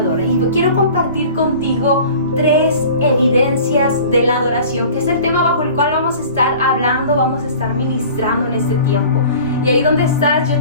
Y quiero compartir contigo 3 evidencias de la adoración, que es el tema bajo el cual vamos a estar hablando, vamos a estar ministrando en este tiempo. Y ahí donde estás, yo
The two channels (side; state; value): both; inverted; correlation -0.44